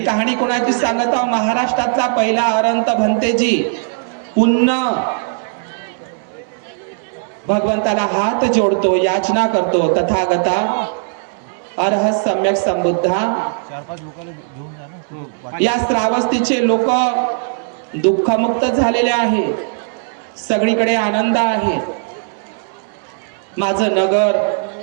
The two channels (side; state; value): left; silent; 68 dB below the other